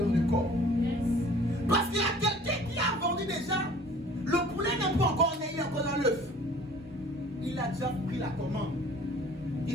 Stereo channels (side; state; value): both; normal; correlation 0.49